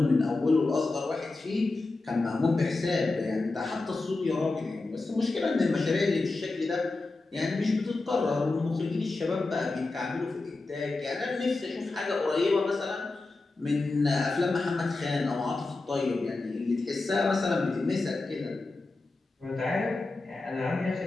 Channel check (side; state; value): right; quieter; 3.4 dB